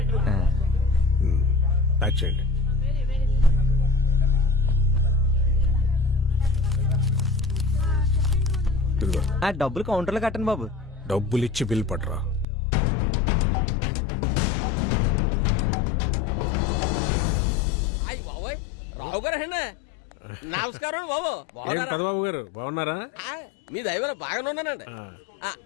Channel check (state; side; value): drops out; right; at 12.5 s